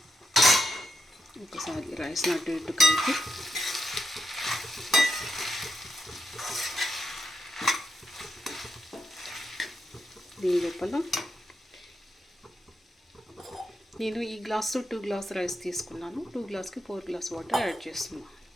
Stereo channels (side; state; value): both; normal; correlation 0.84